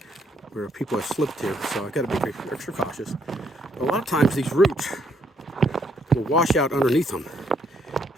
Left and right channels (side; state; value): both; normal; correlation 0.71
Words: where people have slipped here, so I've got to be extra cautious. A lot of times these roots will wash out underneath them,